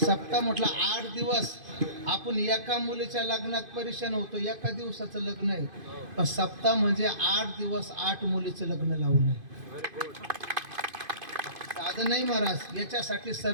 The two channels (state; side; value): late; left; 2.5 ms